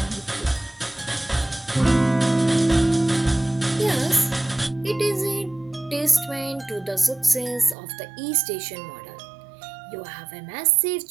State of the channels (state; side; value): drops out; left; at 7.8 s